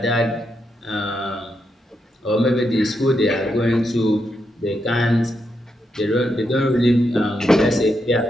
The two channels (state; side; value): normal; both; correlation 0.82